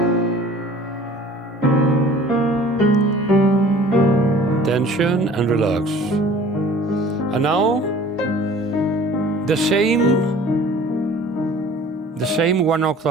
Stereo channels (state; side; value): normal; both; correlation 0.48